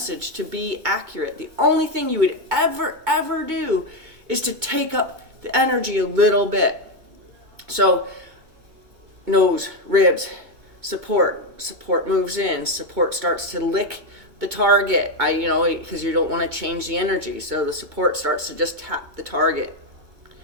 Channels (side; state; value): left; late; 2.2 ms